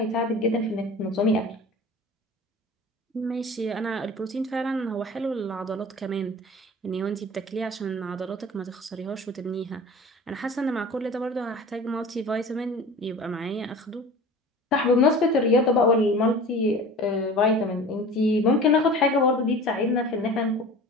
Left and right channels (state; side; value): normal; both; correlation 0.39